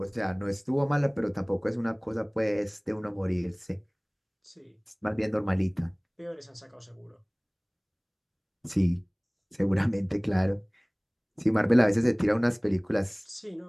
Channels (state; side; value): identical; both; correlation 1.00